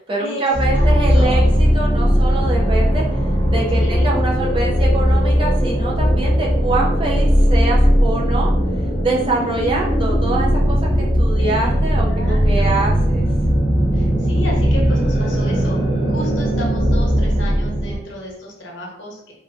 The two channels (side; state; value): both; normal; correlation 0.85